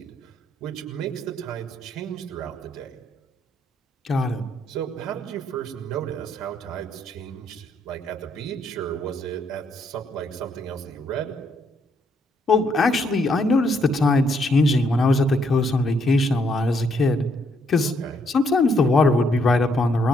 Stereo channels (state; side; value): normal; both; correlation 0.73